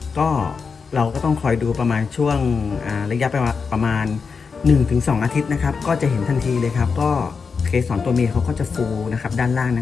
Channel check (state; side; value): quieter; right; 5.3 dB